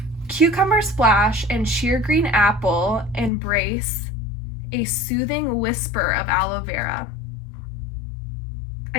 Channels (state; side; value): drops out; right; at 3.3 s